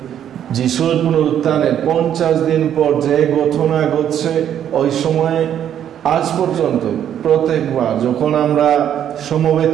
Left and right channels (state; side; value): quieter; left; 9.9 dB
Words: যিশুর পুনরুত্থানের 50 দিন পর যে ঘটনা ঘটছে, ওই সময় আজ পর্যন্ত প্রত্যেকবার যখন আমরা সমবেত